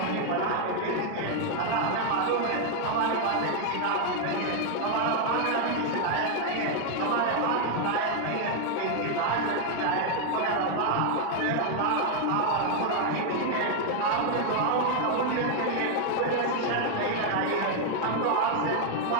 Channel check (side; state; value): both; different; correlation 0.00